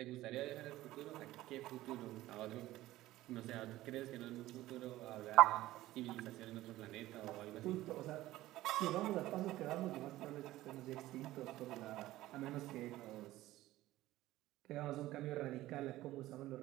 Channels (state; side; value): quieter; left; 16.1 dB